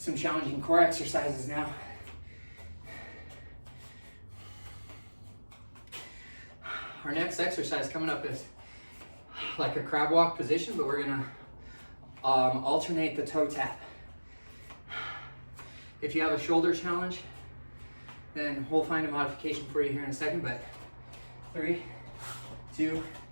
challenging core exercises now. Our next exercise coming up is like a crab walk position, but we're gonna alternate the toe tap. If you have a shoulder challenge, then we'll find a modification for you here in a second, but 3, 2,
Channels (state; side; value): inverted; both; correlation -1.00